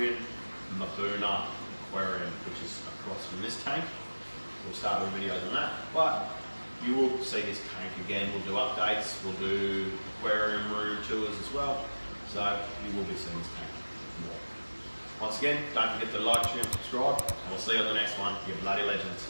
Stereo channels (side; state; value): both; inverted; correlation -1.00